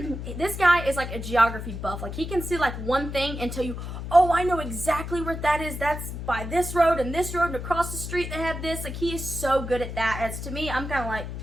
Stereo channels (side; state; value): left; noise; hum, 7 dB below the sound